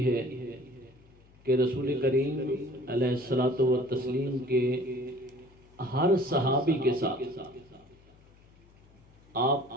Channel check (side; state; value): left; noise; hum, 27 dB below the sound